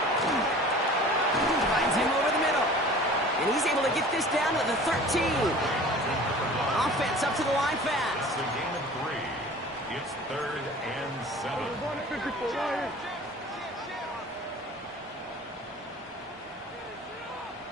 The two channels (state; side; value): normal; both; correlation 0.44